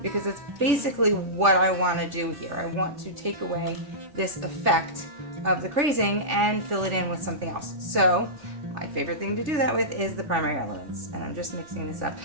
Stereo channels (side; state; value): left; late; 3.4 ms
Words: because it's basically what I want to do here. I want to take away this effect of the crazing and fill it in with something else. So my favorite thing to do that with is the primary elements, and I'm just mixing this up.